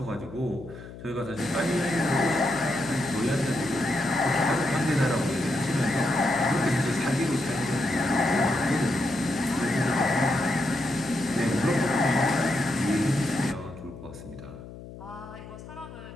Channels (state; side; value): noise; left; hum, 15 dB below the sound